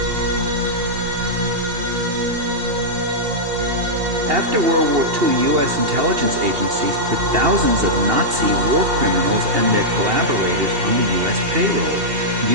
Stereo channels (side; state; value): left; late; 2.8 ms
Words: After World War II, U.S. intelligence agencies put thousands of Nazi war criminals and their collaborators on the U.S. payroll,